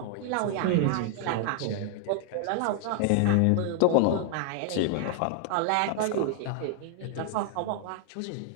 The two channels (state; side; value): different; both; correlation 0.00